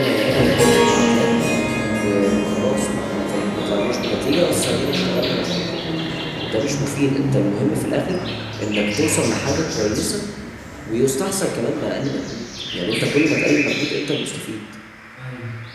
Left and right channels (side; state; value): both; identical; correlation 1.00